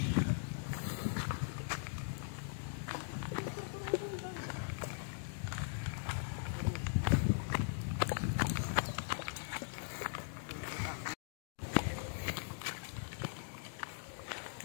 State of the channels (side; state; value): right; silent; digital silence